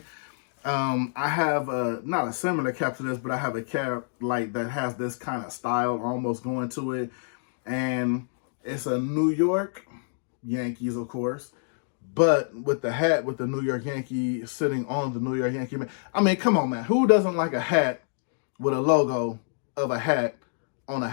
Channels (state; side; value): silent; right; digital silence